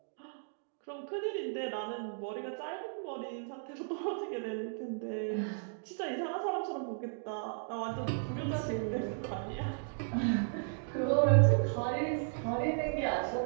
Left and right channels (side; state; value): left; silent; digital silence